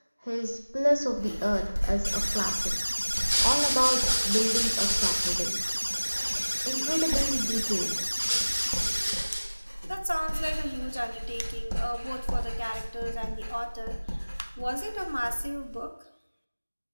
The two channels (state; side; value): inverted; both; correlation -1.00